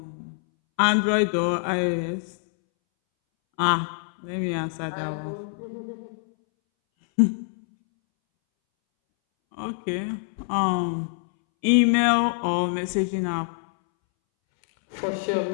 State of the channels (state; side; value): silent; right; 62 dB below the other